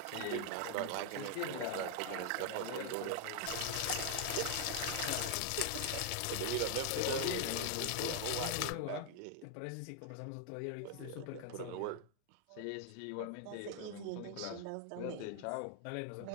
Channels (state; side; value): different; both; correlation 0.00